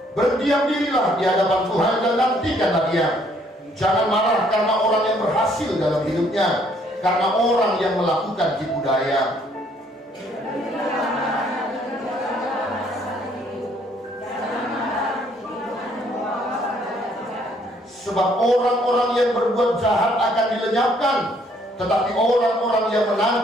Berdiam dirilah di hadapan Tuhan dan nantikanlah Dia. Jangan marah karena orang yang berhasil dalam hidupnya, karena orang yang melakukan tipu daya. Sebab orang-orang yang berbuat jahat akan dilenyapkan, tetapi orang-orang yang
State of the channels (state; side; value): normal; both; correlation 0.65